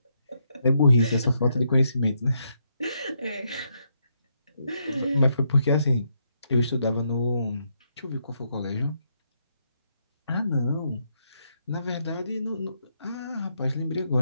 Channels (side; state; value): both; inverted; correlation -0.78